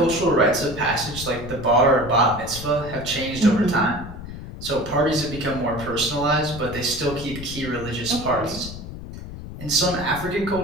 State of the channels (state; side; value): noise; left; rumble, 11 dB below the sound